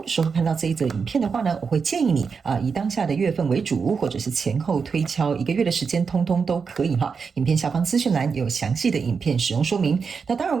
的时候看到这一则影片的话呢，我会建议你以当下的月份为主，或者是前后推敲1个月的时间，通通都可以哈。影片下方资讯栏有详细的影片使用说明。那当然，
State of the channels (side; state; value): left; quieter; 5.5 dB